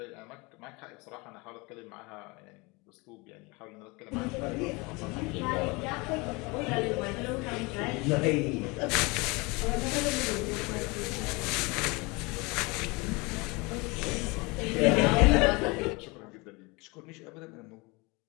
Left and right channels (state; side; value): quieter; right; 26.2 dB